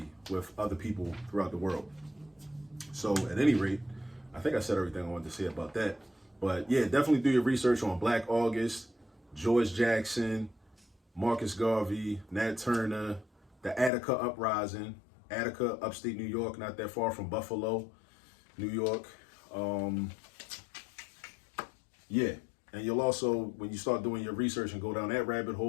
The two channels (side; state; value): right; drops out; at 13.9 s